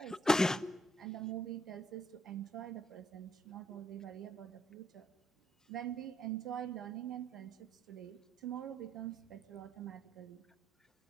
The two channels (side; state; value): both; normal; correlation 0.72